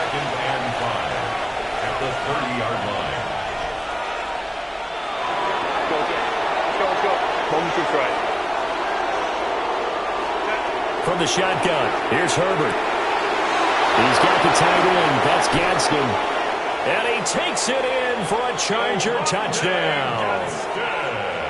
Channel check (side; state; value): both; identical; correlation 1.00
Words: and 5 at the 30-yard line. Let's go. Moment to try. From the shotgun, here's Herbert. He's got the tight end. That's Gadsden. And he takes it in for a Charger touchdown.